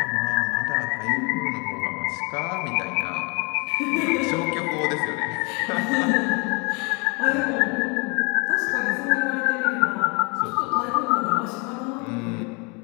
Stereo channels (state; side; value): quieter; right; 31.6 dB